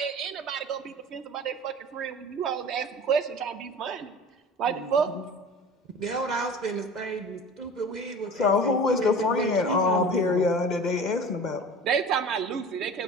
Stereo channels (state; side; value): normal; both; correlation 0.39